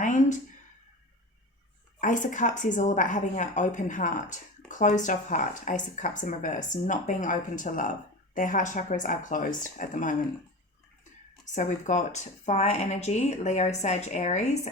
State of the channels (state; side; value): normal; both; correlation 0.30